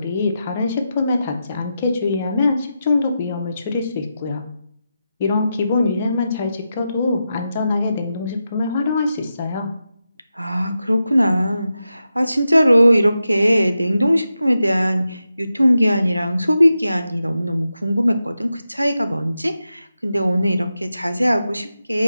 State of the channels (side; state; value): both; inverted; correlation -0.89